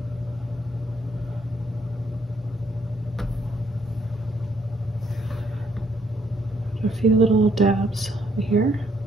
A few little dabs here.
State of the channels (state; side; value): normal; both; correlation 0.70